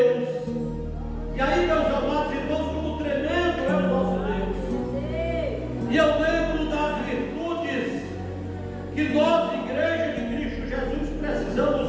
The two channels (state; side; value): identical; both; correlation 1.00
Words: E aí, meus amados irmãos, como tremendo é o nosso Deus. E eu lembro das virtudes que nós, Igreja de Cristo Jesus, precisamos